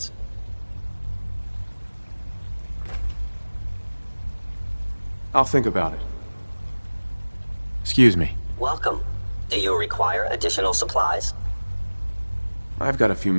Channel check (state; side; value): inverted; both; correlation -1.00